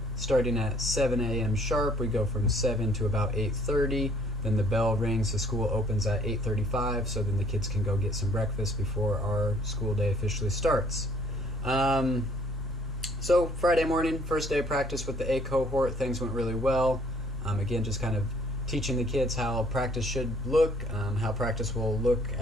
starting at 7 a.m. sharp. We go from 7 to about 8:30. Then the bell rings, the school opens at 8:35, so then the kids can go get some breakfast before our school day officially starts. So Friday morning, first day of practice with the A cohort, things went really well. Again, just kind of teaching the kids how practice should look, how practice will look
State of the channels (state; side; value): normal; both; correlation 0.61